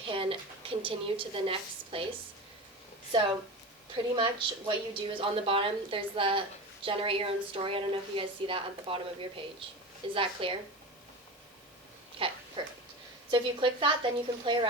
continue to the next place. So pretty much what you do is on the bottom, there's the generate your own story. I don't know if you guys see that at the bottom of your page. Is that clear? Okay, perfect. So if you click that, then you can play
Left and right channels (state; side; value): normal; both; correlation 0.28